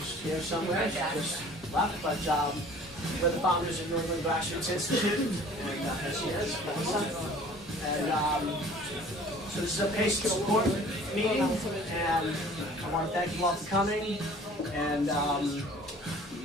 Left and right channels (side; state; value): both; normal; correlation 0.50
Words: here somewhere. She just left, but we're the founders of New England Grassroots Institute, and here she is, Melissa. And so this is a patient support meeting, and I want to thank you all for coming. And